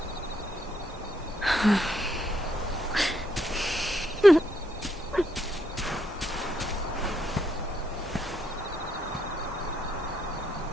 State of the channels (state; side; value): normal; both; correlation 0.75